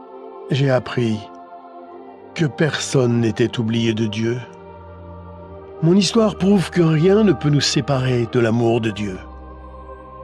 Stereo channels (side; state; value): both; identical; correlation 1.00